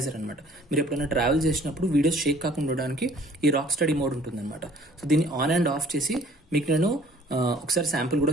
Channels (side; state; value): both; normal; correlation 0.55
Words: అనమాట. మీరు ఎప్పుడైనా ట్రావెల్ చేసినప్పుడు వీడియోస్ షేక్ కాకుండా ఉండడానికి ఈ రాక్ స్టడీ మోడ్ ఉంటుంది అనమాట. సో దీన్ని ఆన్ అండ్ ఆఫ్ చేసి మీకు నేను ఒకసారి శాంపుల్ కూడా